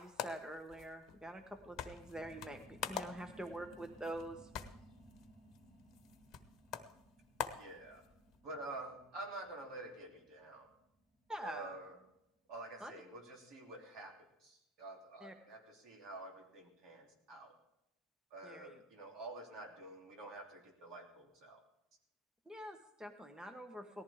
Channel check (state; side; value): normal; both; correlation 0.44